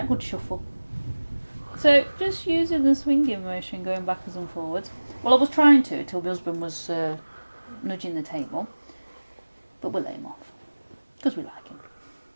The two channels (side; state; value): both; inverted; correlation -1.00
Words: good shuffle. So just using the swinging motion, going backwards and forwards. Well, I was trying to till my husband was nudging the table, but we'll let him off because we like him.